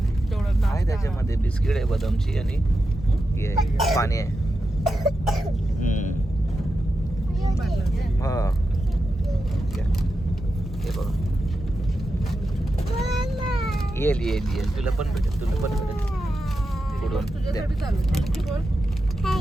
तेवढं आहे नाश्ता. त्याच्यामध्ये बिस्किट आहे बदामची आणि हे आहे, पाणी आहे. हा घ्या. हे बघा येईल येईल येईल. तुला पण भेटेल तुला पण भेटेल. पुढून द्या. तुझ्यासाठी चालू. थँक्यू बोल.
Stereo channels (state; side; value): normal; both; correlation 0.89